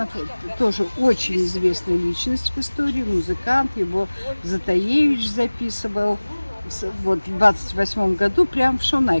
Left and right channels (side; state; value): both; inverted; correlation -1.00